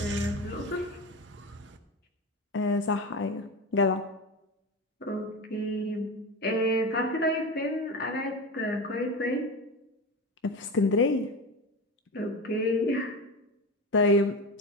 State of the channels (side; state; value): both; normal; correlation 0.23